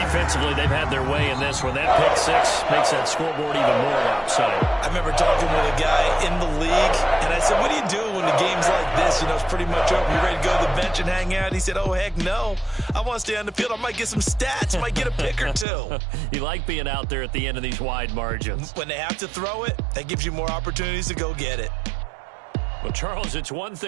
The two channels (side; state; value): left; drops out; at 15.7 s